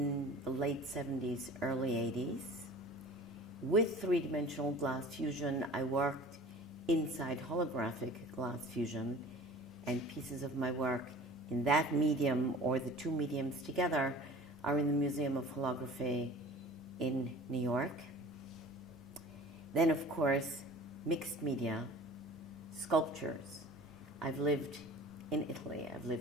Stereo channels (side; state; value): both; normal; correlation 0.42